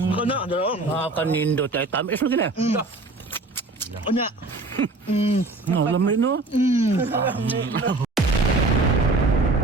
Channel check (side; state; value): left; quieter; 3.2 dB